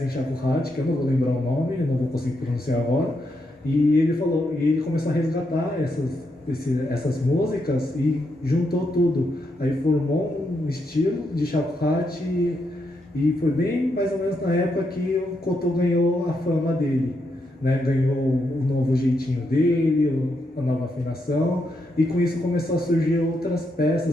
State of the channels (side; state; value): both; normal; correlation 0.81